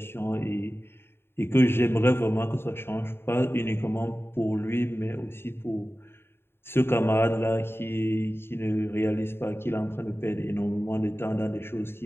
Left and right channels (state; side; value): late; right; 0.11 ms